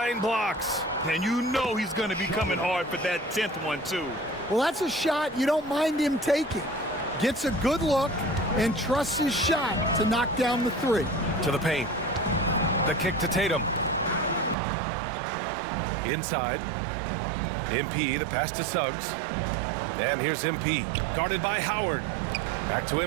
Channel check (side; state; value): left; drops out; at 14.6 s